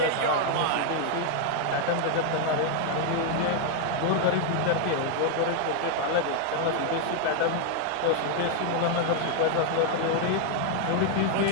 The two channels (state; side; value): different; both; correlation 0.00